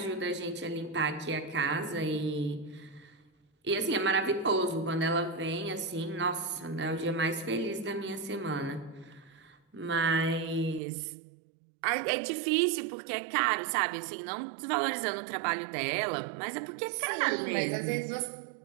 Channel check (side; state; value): left; drops out; at 10.8 s